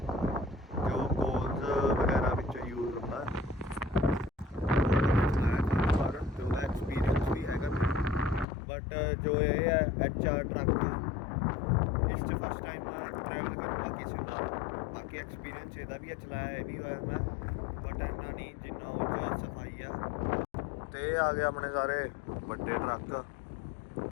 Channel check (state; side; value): drops out; right; at 8.5 s